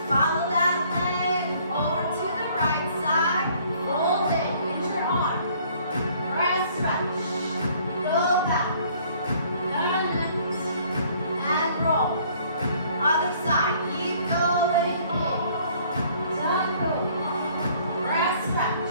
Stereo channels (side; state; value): both; inverted; correlation -0.59